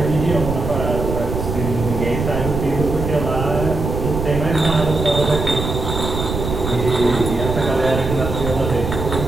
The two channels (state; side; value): noise; right; rumble, 4 dB below the sound